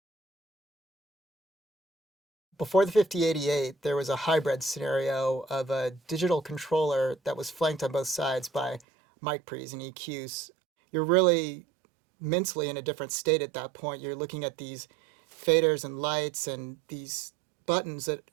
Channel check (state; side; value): drops out; left; at 8.8 s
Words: Before the 5088, there was a hybrid scenario of a digital controller that was flanked on both sides by mic pre's and EQs. You're really mentally in a different state at that point. You're looking at these faders and lights and these buttons that